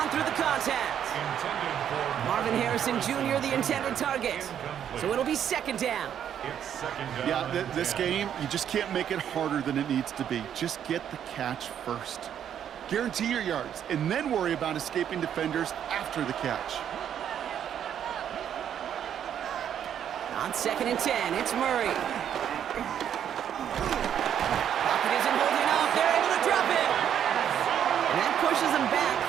through the contact. Marvin Harrison Jr., the intended target. So it'll be second down. Yeah, this game, you just can't make it harder than it needs to be. Just get the catch first. Guarantee your yards, and then worry about escaping defenders after the catch. On second and 10, it's Murray. Pocket isn't holding up. They're able to drop it. And that pushes them back.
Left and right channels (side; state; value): left; quieter; 9.4 dB